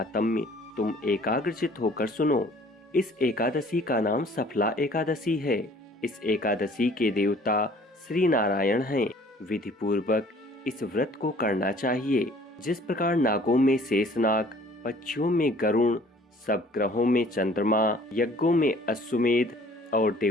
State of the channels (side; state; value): both; normal; correlation 0.54